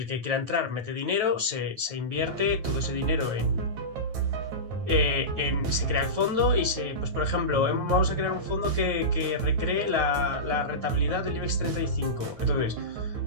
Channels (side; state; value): left; late; 9.3 ms